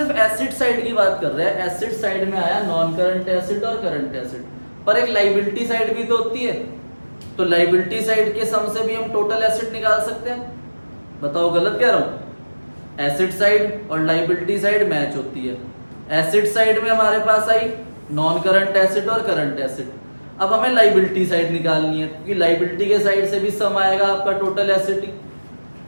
एसेट साइड की बात कर रहे हैं, एसेट साइड में आया नॉन करंट एसेट और करंट एसेट, पर एक लाइबिलिटी साइड भी तो होती है, तो लाइबिलिटी साइड के सम से भी हम टोटल एसेट निकाल सकते हैं। बताओ गलत कह रहा हूं? एसेट साइड और लाइबिलिटी साइड मैच होती है। एसेट साइड में हमारे पास आई नॉन करंट एसेट और करंट एसेट, अब हमें लाइबिलिटी साइड निकालनी है, क्योंकि लाइबिलिटी के साइड से भी सम आएगा आपका टोटल एसेट ही।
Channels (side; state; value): both; inverted; correlation -1.00